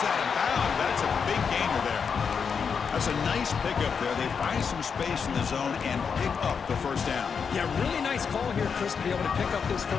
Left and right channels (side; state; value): right; quieter; 6.2 dB